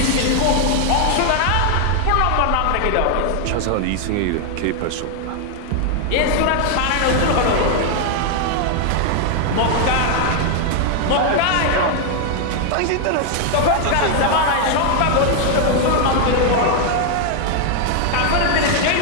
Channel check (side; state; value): both; different; correlation 0.00